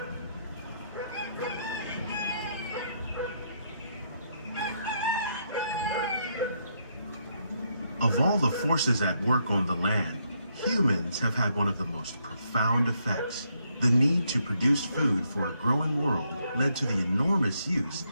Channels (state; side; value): inverted; both; correlation -0.76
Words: Of all the forces at work on the land, humans have had one of the most profound effects. The need to produce food for a growing world led to the enormous use